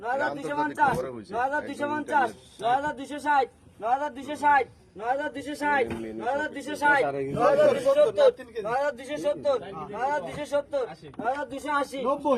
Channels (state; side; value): identical; both; correlation 1.00